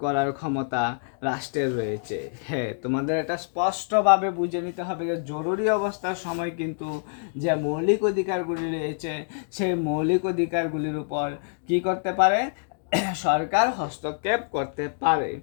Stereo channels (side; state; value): right; silent; digital silence